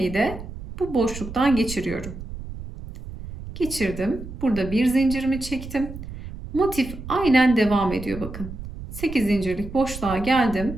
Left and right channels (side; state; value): right; noise; rumble, 11 dB below the sound